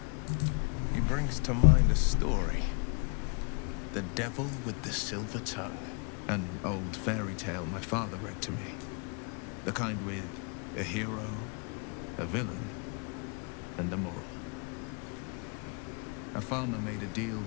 He brings to mind a story. The Devil with the Silver Tongue. An old fairy tale my father read to me. The kind with a hero, a villain, and a moral. A farmer made a deal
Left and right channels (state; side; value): quieter; right; 37.6 dB